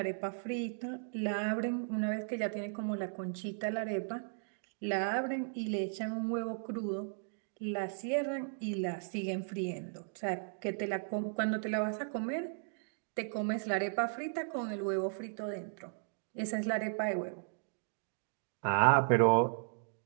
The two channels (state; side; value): silent; left; digital silence